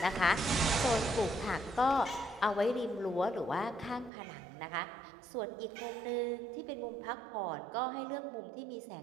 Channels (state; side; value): drops out; left; at 4.1 s